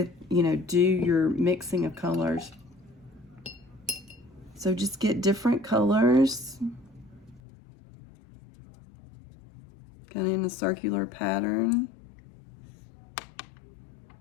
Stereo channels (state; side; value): drops out; right; at 7.4 s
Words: your mixing of colors. So just get different colors, kind of in a circular pattern.